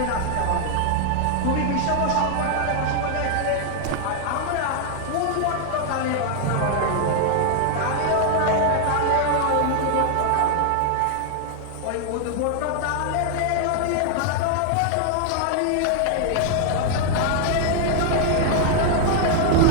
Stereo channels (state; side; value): different; both; correlation 0.00